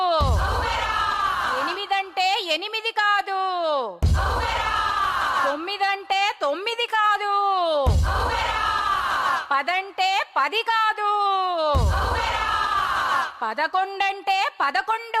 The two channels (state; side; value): identical; both; correlation 1.00